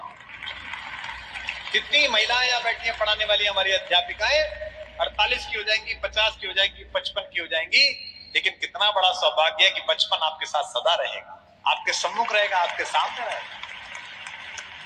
हूँ। कितनी महिलाएं यहाँ बैठी हैं पढ़ाने वाली, हमारी अध्यापिकाएं 48 की हो जाएंगी, 50 की हो जाएंगी, 55 की हो जाएंगी, लेकिन कितना बड़ा सौभाग्य है कि बचपन आपके साथ सदा रहेगा, आपके सम्मुख रहेगा, आपके सामने रहेगा।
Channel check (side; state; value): both; identical; correlation 1.00